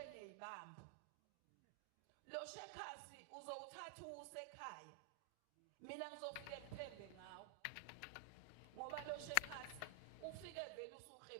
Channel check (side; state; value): both; different; correlation 0.00